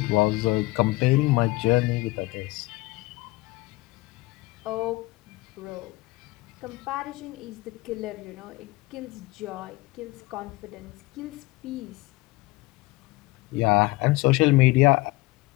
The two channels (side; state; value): right; quieter; 21.6 dB